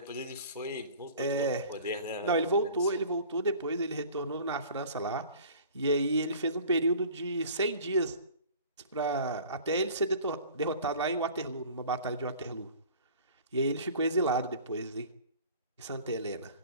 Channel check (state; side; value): inverted; both; correlation -0.45